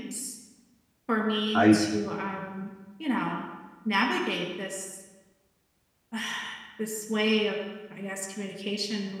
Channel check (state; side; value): identical; both; correlation 1.00